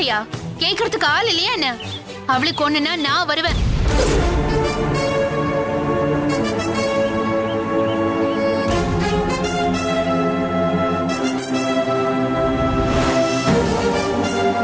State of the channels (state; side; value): identical; both; correlation 1.00